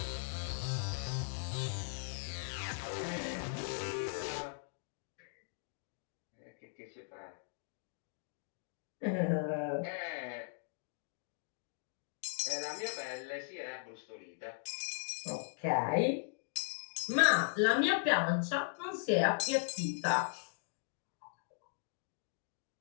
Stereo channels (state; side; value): silent; right; digital silence